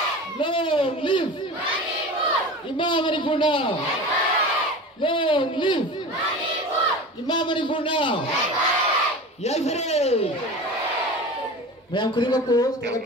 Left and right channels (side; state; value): both; normal; correlation 0.33